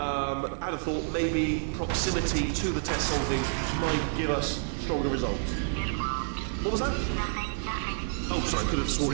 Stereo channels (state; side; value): silent; left; 59 dB below the other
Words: have thought maybe proximity to the test solving might give us stronger results. It won't. What was that? Nothing. Oh, sorry, I could have